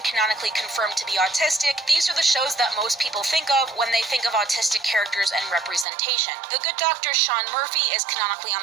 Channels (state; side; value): drops out; left; at 5.9 s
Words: canonically confirmed to be autistic, these are the shows that most people think of when they think of autistic characters and representation. The Good Doctor Sean Murphy is canonically on